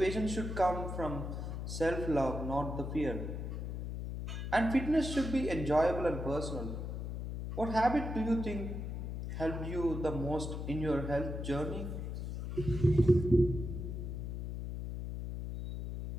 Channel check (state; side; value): noise; left; hum, 5 dB below the sound